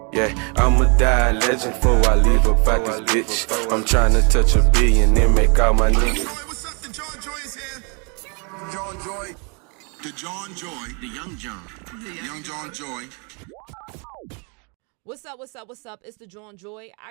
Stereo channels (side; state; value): left; quieter; 35.1 dB